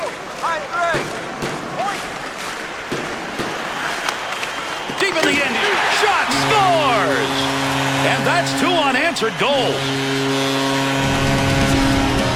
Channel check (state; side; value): identical; both; correlation 1.00